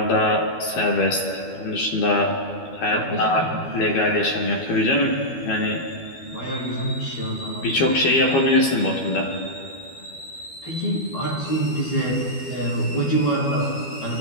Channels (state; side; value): late; right; 12 ms